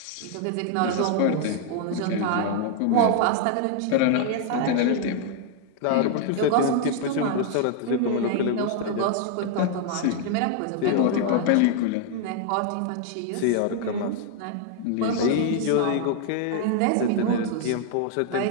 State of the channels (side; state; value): both; different; correlation 0.00